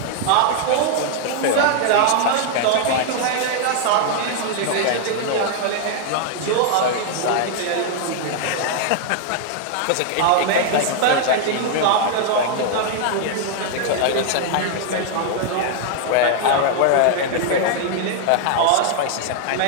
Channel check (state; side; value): different; both; correlation 0.00